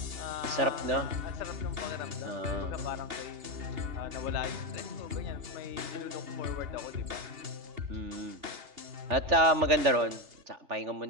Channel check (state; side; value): late; left; 3.4 ms